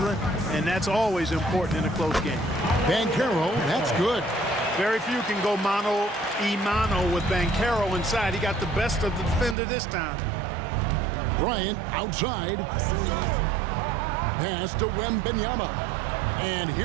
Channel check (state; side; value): drops out; left; at 9.6 s